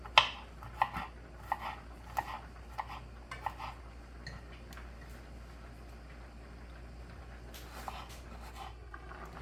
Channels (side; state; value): both; identical; correlation 1.00